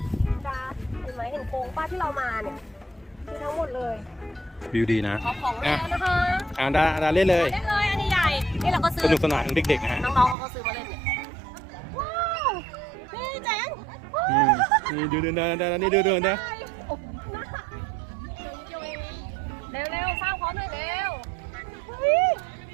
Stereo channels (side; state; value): left; drops out; at 10.4 s